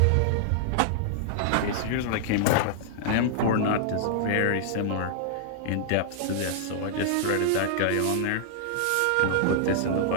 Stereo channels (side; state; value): both; different; correlation -0.01